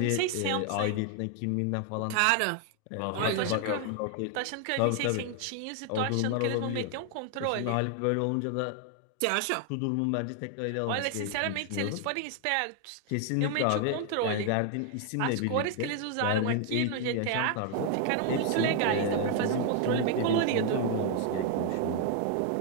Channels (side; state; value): both; different; correlation 0.00